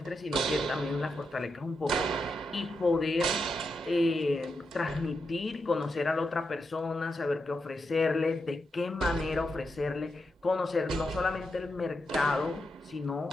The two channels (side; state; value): both; normal; correlation 0.85